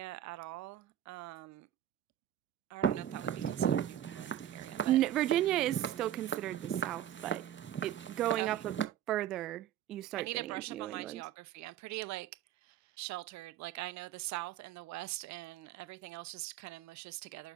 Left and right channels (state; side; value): quieter; left; 11.4 dB